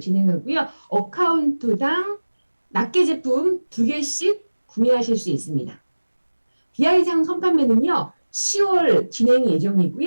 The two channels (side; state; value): both; inverted; correlation -1.00